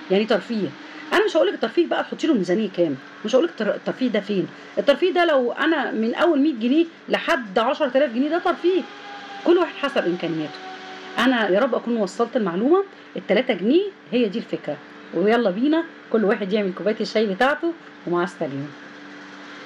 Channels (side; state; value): both; identical; correlation 1.00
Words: يعني ترفيه. انا مش هقول لك الترفيه بقى تحطي له ميزانيه كام، مش هقول لك الترفيه ده فين. الترفيه ده لو انا من اول 100 جنيه لحد 10000 جنيه ده ترفيه، كل واحد حسب امكانياته. انا يا رب اكون وصلت المعلومه. ال3 جنيه هي دي الفكره، ويلا بينا كل واحد يعمل كوبايه الشاي بتاعته، ومع السلامه.